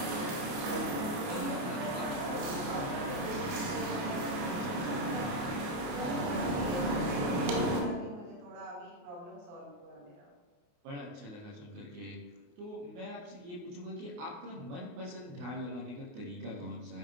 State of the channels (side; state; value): left; late; 28 ms